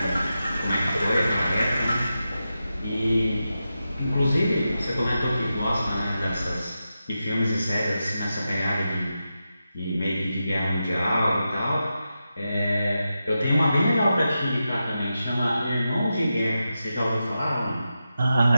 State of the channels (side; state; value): both; inverted; correlation -0.90